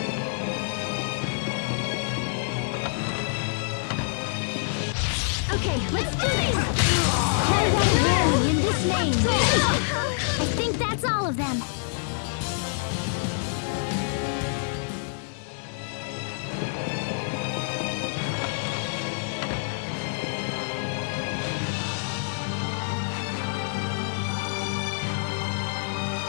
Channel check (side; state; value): right; silent; digital silence